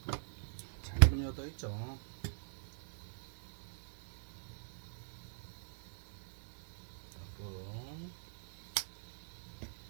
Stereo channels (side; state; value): left; silent; digital silence